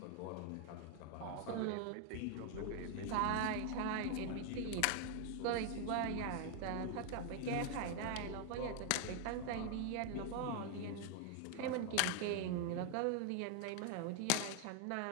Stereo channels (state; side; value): different; both; correlation 0.00